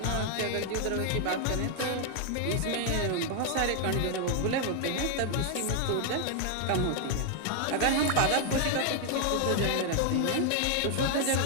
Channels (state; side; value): different; both; correlation 0.00